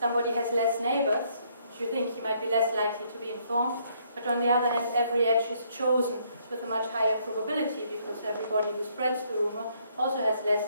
has less neighbors, which you think he might be less likely to be informed. But on the other hand, every edge is chosen with a much higher probability because everybody who spreads the rumor also has less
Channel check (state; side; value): inverted; both; correlation -0.69